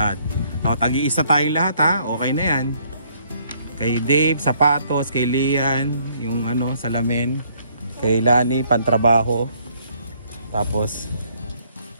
O, tagi-isa tayong lahat ha. Okay na yan. Kay Dave, sapatos. Kay Lian, yung ano, salamin. Kay Lani, pantrabaho. Tapos,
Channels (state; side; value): inverted; both; correlation -0.66